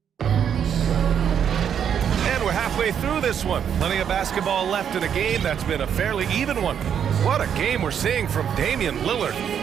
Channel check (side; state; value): left; quieter; 8.4 dB